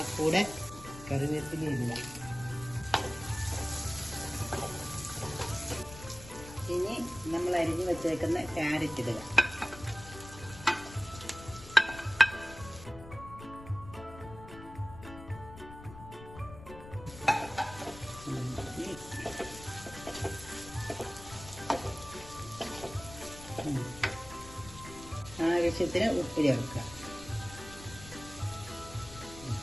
കൂടെ കറിവേപ്പില ഇടുക. ഇനി നമ്മൾ അരിഞ്ഞു വെച്ചേക്കുന്ന ക്യാരറ്റ് ഇടുക. ആവശ്യത്തിന് ഉപ്പ് ചേർക്കുക.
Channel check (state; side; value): noise; left; rumble, 15 dB below the sound